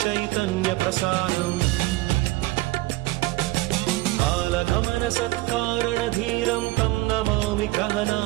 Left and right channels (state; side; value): quieter; left; 19.1 dB